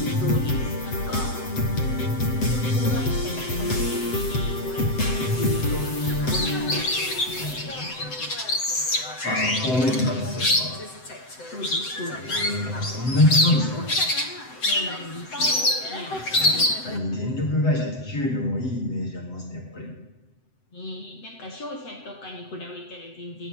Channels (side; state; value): right; late; 7.8 ms